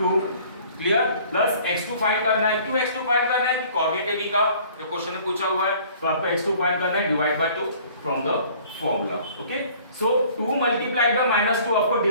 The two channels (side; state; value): both; inverted; correlation -0.53